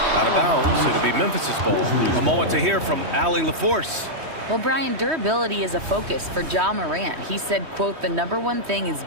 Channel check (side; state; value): left; late; 3.1 ms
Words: out of bounds. It'll be Memphis's ball. A moment to hear from Allie LaForce. Well, Brian, durability is a focus for Ja Morant. He said, quote, "The #1 thing is